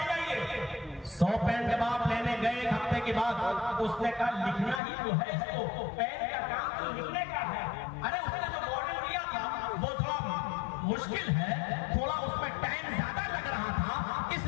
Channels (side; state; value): right; drops out; at 4.8 s